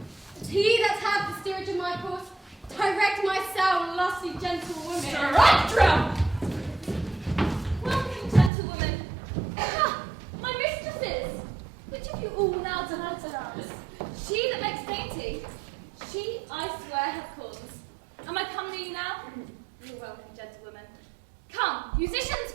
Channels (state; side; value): drops out; left; at 8.5 s